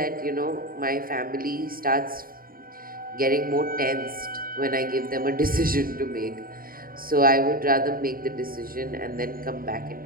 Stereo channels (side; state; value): left; late; 0.42 ms